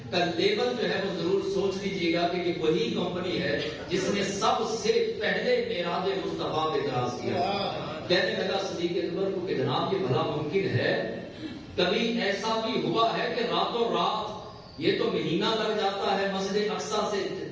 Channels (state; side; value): identical; both; correlation 1.00